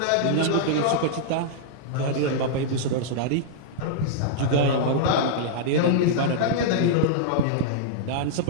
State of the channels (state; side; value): different; both; correlation -0.02